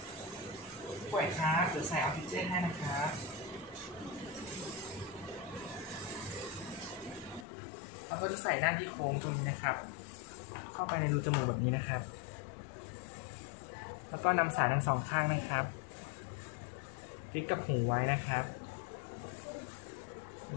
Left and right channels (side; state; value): right; drops out; at 7.5 s